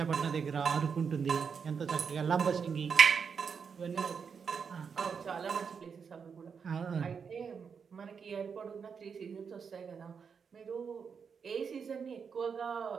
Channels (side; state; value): left; quieter; 6.2 dB